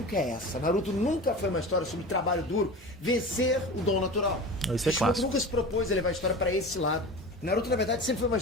é essa. Naruto nunca foi uma história sobre trabalho duro vencer o dom natural. Isso é clássico. Nunca se propôs a levar a história pra esse lado. Naruto, na verdade, sempre foi uma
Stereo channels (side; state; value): both; normal; correlation 0.32